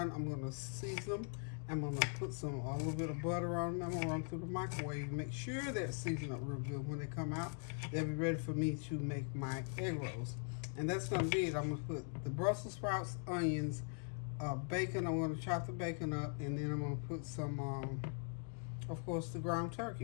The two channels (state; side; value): silent; right; 50 dB below the other